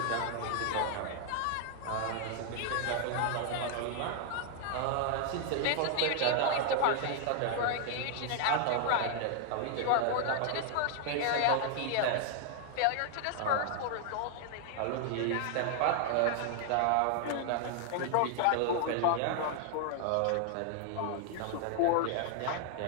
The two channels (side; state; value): both; different; correlation 0.00